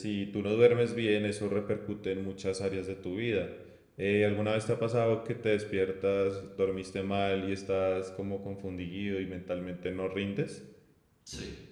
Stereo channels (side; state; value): both; identical; correlation 1.00